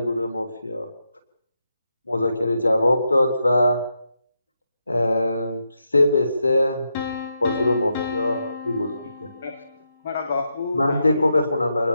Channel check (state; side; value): inverted; both; correlation -0.84